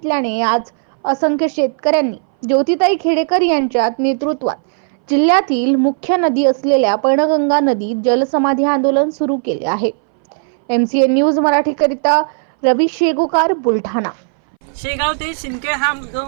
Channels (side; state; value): left; silent; 63 dB below the other